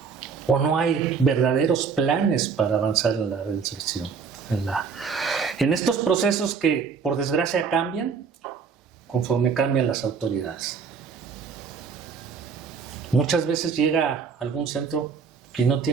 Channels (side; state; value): left; quieter; 5.9 dB